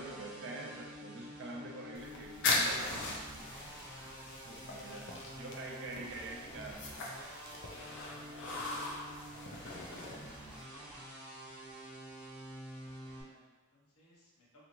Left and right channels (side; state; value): both; normal; correlation 0.10